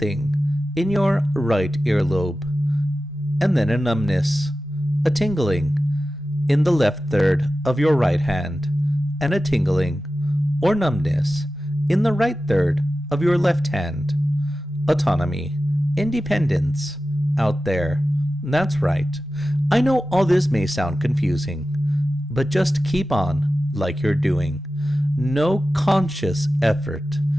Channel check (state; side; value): normal; both; correlation 0.94